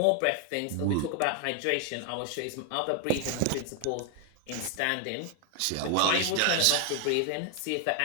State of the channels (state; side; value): different; both; correlation 0.00